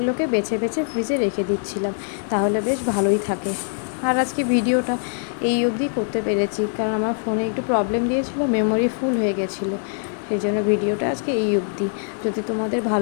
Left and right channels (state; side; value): silent; right; digital silence